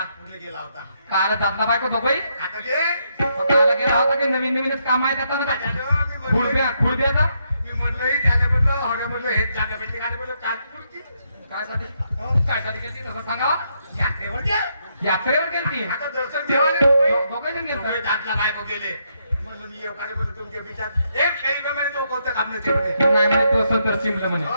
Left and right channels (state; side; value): inverted; both; correlation -0.77